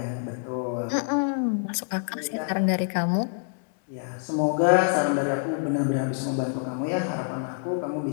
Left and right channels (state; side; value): silent; right; 59 dB below the other